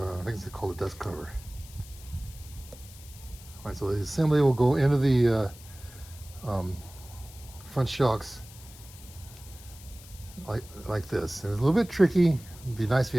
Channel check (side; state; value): left; noise; hiss, 19 dB below the sound